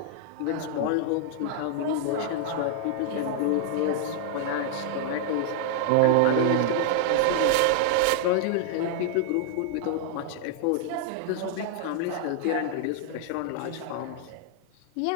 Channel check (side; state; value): both; different; correlation -0.01